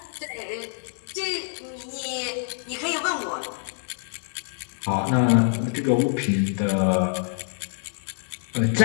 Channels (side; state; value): right; silent; 61 dB below the other